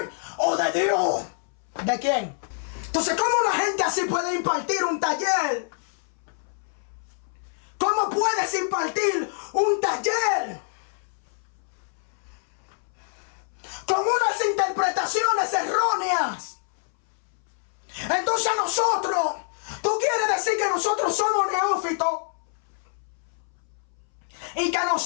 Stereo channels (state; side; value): silent; right; 61 dB below the other